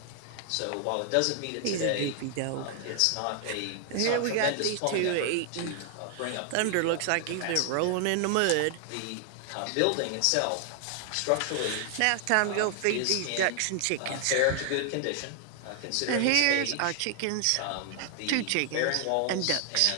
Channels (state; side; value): different; both; correlation 0.00